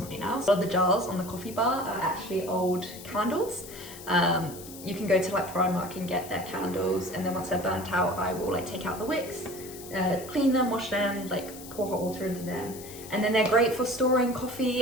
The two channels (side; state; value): left; noise; hiss, 15 dB below the sound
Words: else. A lot of the jars on the coffee bar are actually old candles. You can go to like Primark and get their candles, and then once they're burnt out, I will like take out the wicks, clean them, wash them, like pour hot water into them. And then they're great for storing